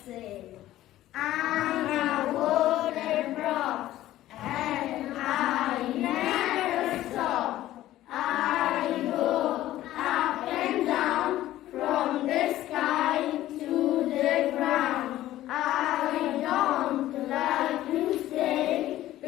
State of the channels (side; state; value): right; quieter; 14.4 dB